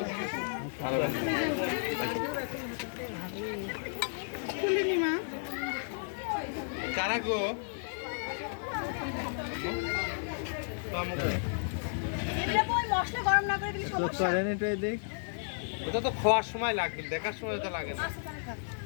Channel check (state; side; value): silent; right; digital silence